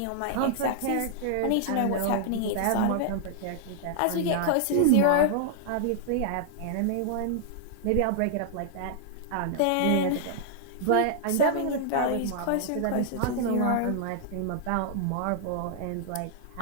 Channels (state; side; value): different; both; correlation -0.01